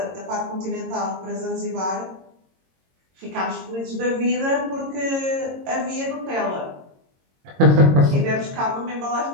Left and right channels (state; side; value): late; left; 22 ms